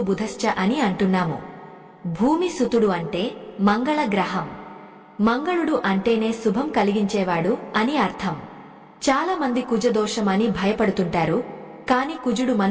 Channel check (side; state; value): both; identical; correlation 1.00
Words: అని అంటున్నాము. భూమి సుతుడు అంటే మంగళ గ్రహం. మంగళుడు అంటేనే శుభం కలిగించేవాడు అని అర్థం. చాలా మంది కుజదోషం అని భయపడుతుంటారు. కాని కుజుడు